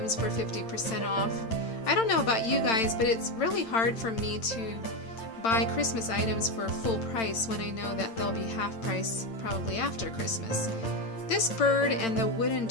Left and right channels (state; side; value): late; right; 8.9 ms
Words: for 50% off. I don't know about you guys, but it's really hard for me to buy Christmas items for full price when I know that they'll be half price probably after Christmas. This bird and the wooden